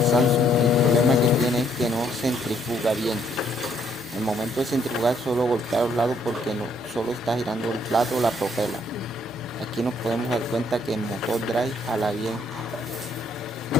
Samsung. El problema que tiene es que no centrifuga bien. En el momento de centrifugar solo golpea a los lados porque no, solo está girando el plato o la propela. Aquí nos podemos dar cuenta que el motor drive jala bien.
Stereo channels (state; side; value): normal; both; correlation 0.68